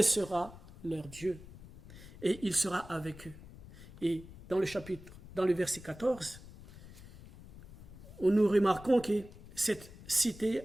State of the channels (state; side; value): noise; left; rumble, 17 dB below the sound